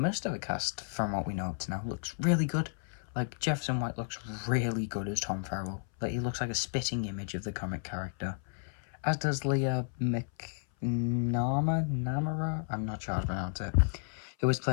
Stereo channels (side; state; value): right; silent; 56 dB below the other